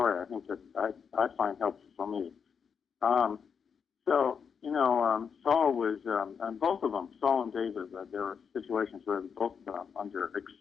I think that I find helpful for me. Saul was, and both of them, Saul and David, there were situations where they were both under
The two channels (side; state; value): right; quieter; 6.6 dB